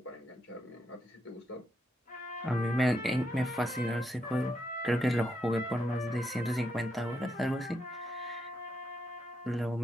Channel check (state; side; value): normal; both; correlation 0.80